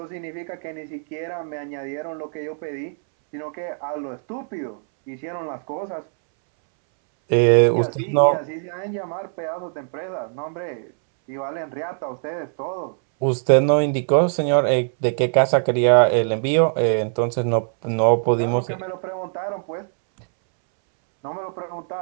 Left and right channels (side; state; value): left; silent; 64 dB below the other